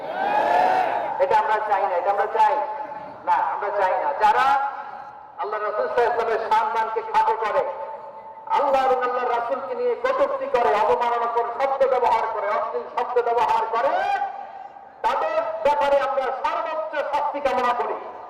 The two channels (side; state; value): both; identical; correlation 1.00